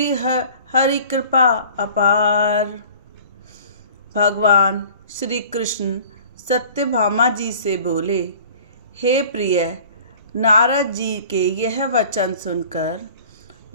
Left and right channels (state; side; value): inverted; both; correlation -0.47